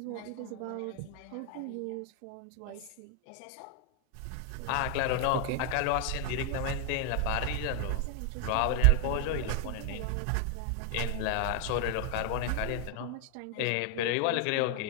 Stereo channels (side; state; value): both; different; correlation 0.00